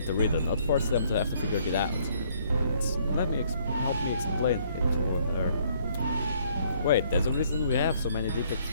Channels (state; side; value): inverted; both; correlation -0.65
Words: the reader, not force them to have to figure it out. Help me explain it to her. Wait, there's a reason we have so many deep